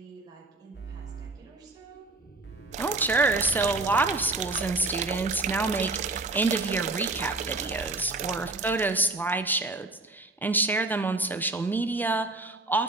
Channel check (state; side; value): quieter; left; 3.1 dB